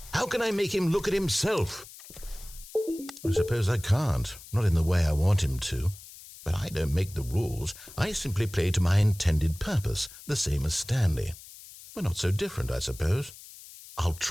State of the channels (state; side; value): noise; left; hiss, 18 dB below the sound